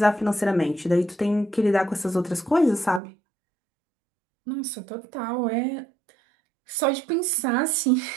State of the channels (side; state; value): left; drops out; at 3.0 s